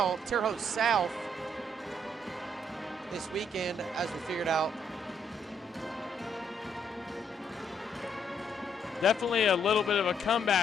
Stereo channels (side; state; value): both; normal; correlation 0.71